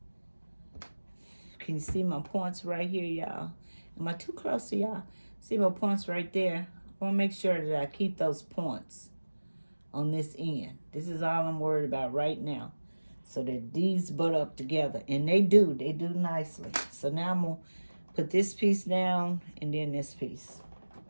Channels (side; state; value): both; inverted; correlation -1.00